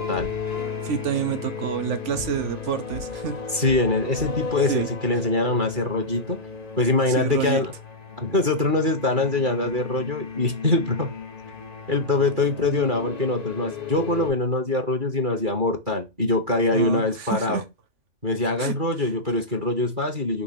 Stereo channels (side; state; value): left; late; 2.3 ms